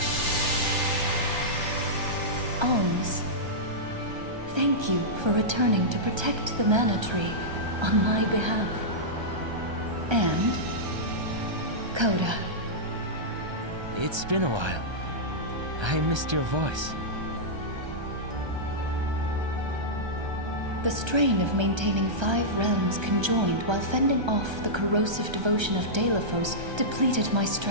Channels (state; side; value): late; left; 1.3 ms